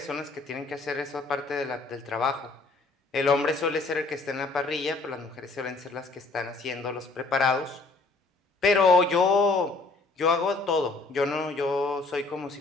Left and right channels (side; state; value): right; quieter; 3.6 dB